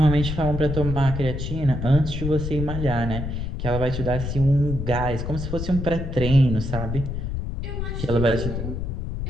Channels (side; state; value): left; noise; rumble, 4 dB below the sound